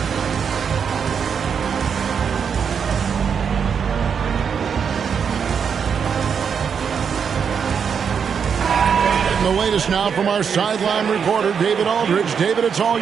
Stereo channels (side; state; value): left; quieter; 6.9 dB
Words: The latest now from our sideline reporter, David Aldridge. David, it's all